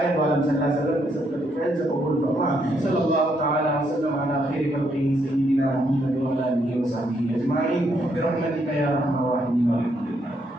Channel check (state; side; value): normal; both; correlation 0.74